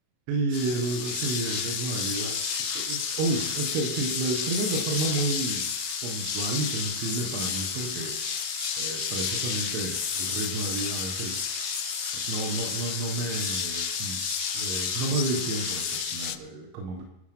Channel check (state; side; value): late; left; 32 ms